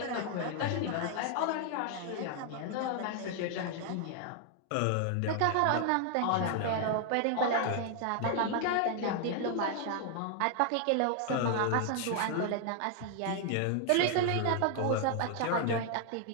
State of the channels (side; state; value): both; different; correlation 0.00